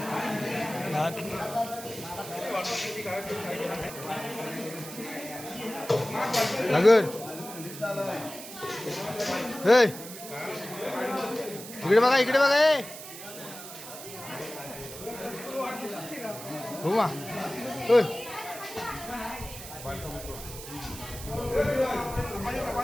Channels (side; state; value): right; noise; hiss, 12 dB below the sound